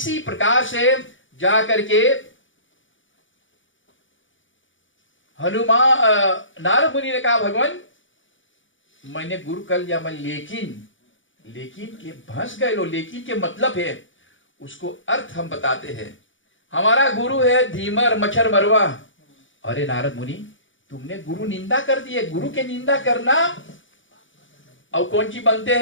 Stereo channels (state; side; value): late; right; 0.56 ms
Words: प्रकार से जा करके हनुमान नारद मुनि ने कहा भगवान मैंने गुरु कर लिया मैं, लेकिन के भंस गए लो। लेकिन के मतलब है उसको अर्थ हम बताते हैं। हमारा गुरु है धीमर मच्छर मरवा। अरे नारद मुनि तुमने गुरु निंदा कर दी है। गुरु के निंदा करना और कौन सी बनते